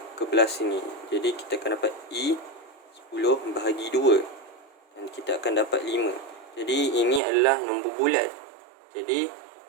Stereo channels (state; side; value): drops out; left; at 7.2 s